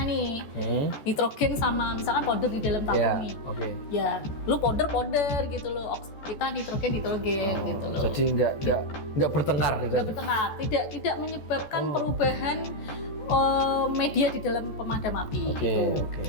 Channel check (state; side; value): late; right; 14 ms